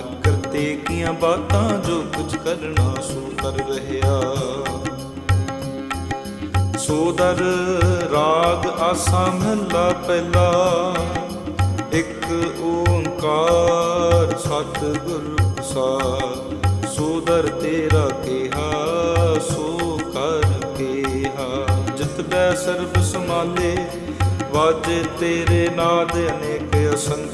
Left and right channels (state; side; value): identical; both; correlation 1.00